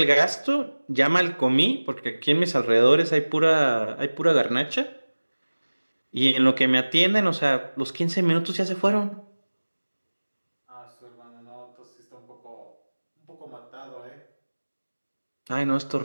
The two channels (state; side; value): inverted; both; correlation -1.00